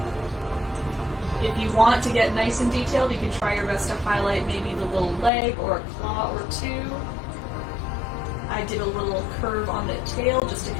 If you want to get nice and detailed, you can try your best to highlight maybe the little leg or a claw or two. I did a little curve on the tail just to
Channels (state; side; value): drops out; right; at 5.3 s